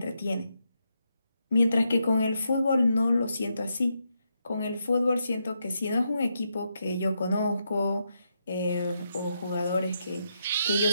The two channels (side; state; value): both; inverted; correlation -0.82